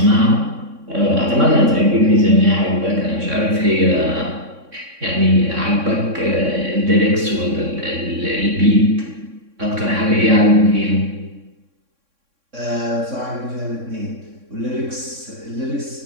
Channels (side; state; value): left; late; 3.6 ms